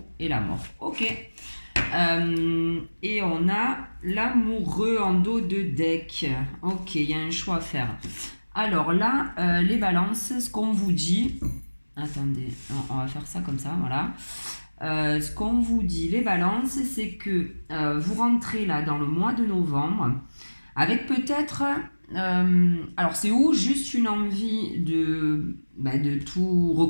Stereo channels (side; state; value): both; inverted; correlation -1.00